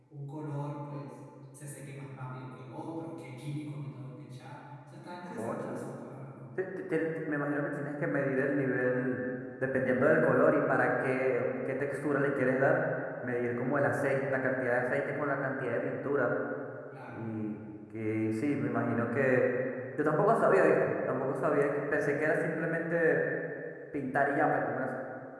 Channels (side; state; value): both; identical; correlation 1.00